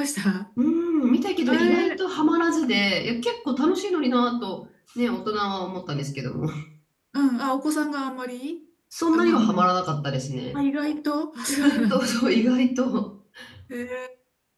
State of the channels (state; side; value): identical; both; correlation 1.00